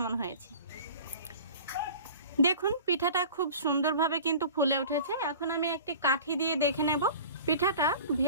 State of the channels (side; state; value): both; inverted; correlation -0.41